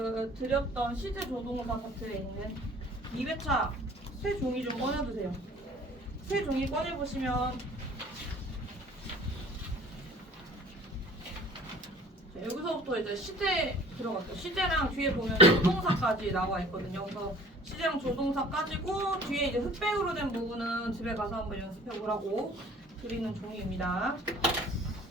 드렸던 시제 조동사 파트에 있는 2회차 새 종이 좀 꺼내주세요. 새 종이 꺼내보시면 여기서부터 이제 시제 들어갔죠. 시제랑 뒤에 보면 조동사까지 나와 있거든요. 그래서 시제랑 조동사까지고 뒤에 이제 흑백으로 된 부분은 집에 가서 한번 연습해 보라고 드리는 종이입니다.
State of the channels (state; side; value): normal; both; correlation 0.49